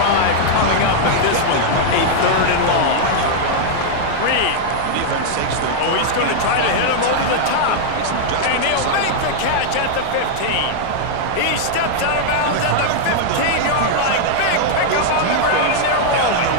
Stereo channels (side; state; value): both; different; correlation -0.01